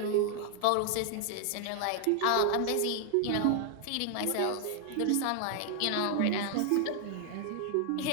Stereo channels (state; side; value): different; both; correlation 0.00